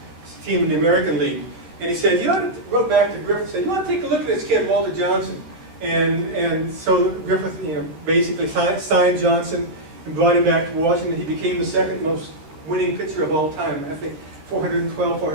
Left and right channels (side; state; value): left; late; 13 ms